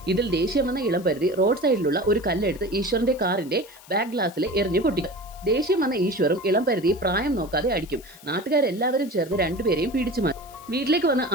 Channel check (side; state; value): left; noise; hiss, 22 dB below the sound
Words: ഇതിൽ ദേഷ്യം വന്ന ഇളംപരുതി റോഡ് സൈഡിലുള്ള ഒരു കല്ലെടുത്ത് ഈശ്വറിന്റെ കാറിന്റെ ബാക്ക് ഗ്ലാസ്സിൽ എറിഞ്ഞു പൊട്ടിക്കും. ദേഷ്യം വന്ന ഈശ്വറും ഇളംപരുതിയെ പ്രായം നോക്കാതെ അടിക്കും. നാട്ടുകാരെല്ലാവരും ചേർന്ന് രണ്ടുപേരെയും പിടിച്ചു മാറ്റും. വീട്ടിലേക്ക് വന്ന്